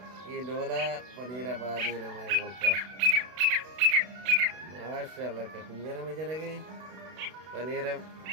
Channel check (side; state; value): left; late; 32 ms